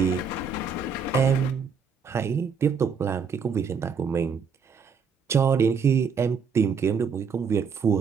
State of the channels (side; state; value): left; quieter; 5.7 dB